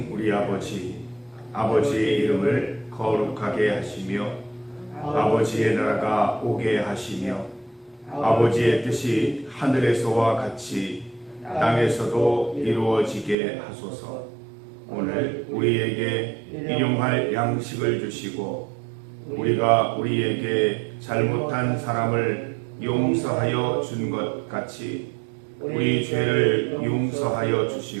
우리 아버지, 아버지의 이름을 거룩하게 하시며 아버지의 나라가 오게 하시며 아버지의 뜻이 하늘에서와 같이 땅에서도 이루어지게 하소서. 오늘 우리에게 일용할 양식을 주시고 우리가 우리에게 잘못한 사람을 용서하여 준 것 같이 우리 죄를 용서하여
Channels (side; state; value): left; drops out; at 13.4 s